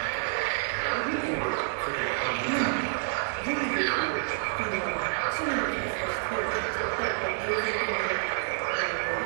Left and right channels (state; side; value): silent; left; digital silence